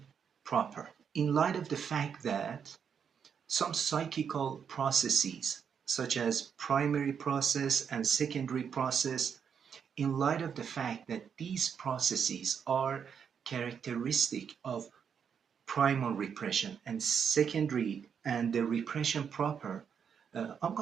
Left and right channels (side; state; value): left; quieter; 7.2 dB